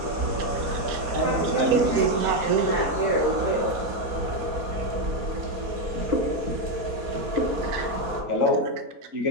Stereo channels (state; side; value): late; left; 4.2 ms